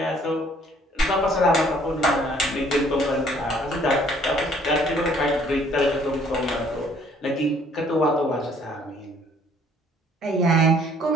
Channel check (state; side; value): normal; both; correlation 0.60